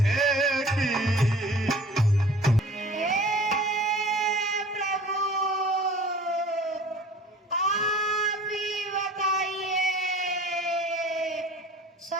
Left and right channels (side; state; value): both; normal; correlation 0.46